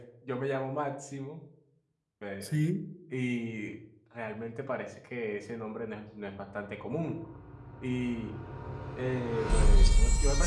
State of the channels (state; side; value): identical; both; correlation 1.00